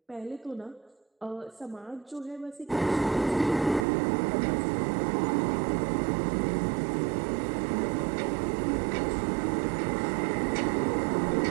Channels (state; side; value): drops out; left; at 3.9 s